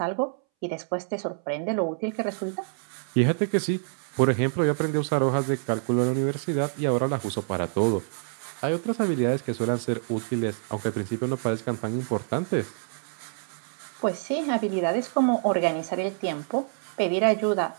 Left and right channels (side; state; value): left; silent; 60 dB below the other